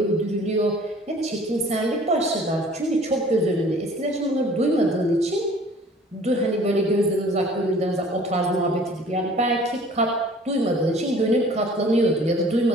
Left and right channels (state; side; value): normal; both; correlation 0.51